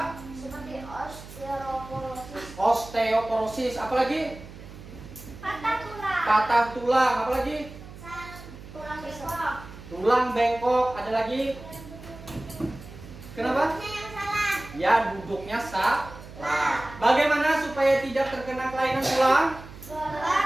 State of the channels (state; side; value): noise; right; hum, 16 dB below the sound